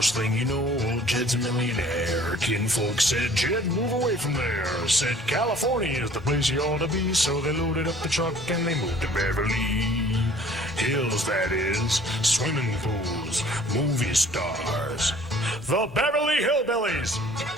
thing you know, old Jed's a millionaire. Kinfolk said, Jed, move away from there. Said, California is the place you ought to be. So they loaded up the truck and they moved to Beverly Hills, that is, swimming pools, movie stars, the Beverly Hillbillies.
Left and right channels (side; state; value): both; normal; correlation 0.52